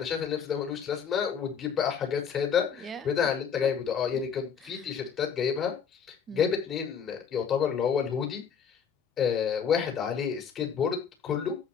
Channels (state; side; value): quieter; right; 7.0 dB